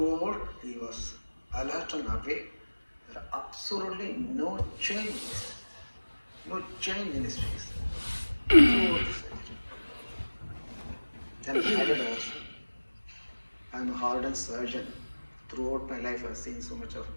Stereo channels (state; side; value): inverted; both; correlation -1.00